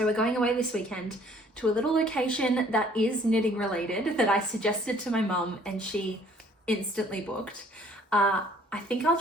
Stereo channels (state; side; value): normal; both; correlation 0.58